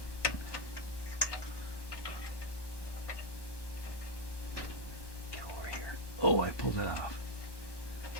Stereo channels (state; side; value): late; right; 1.1 ms